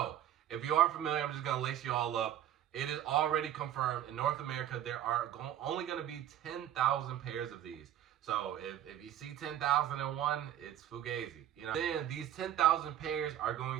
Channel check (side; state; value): left; quieter; 11.5 dB